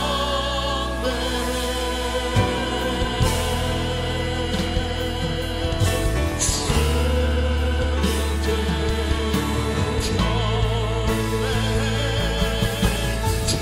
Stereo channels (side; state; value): both; identical; correlation 1.00